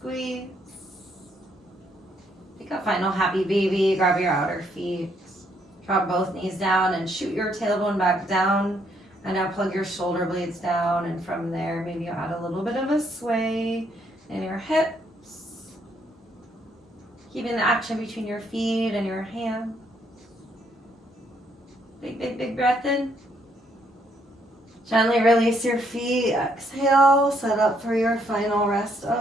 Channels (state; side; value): normal; both; correlation 0.71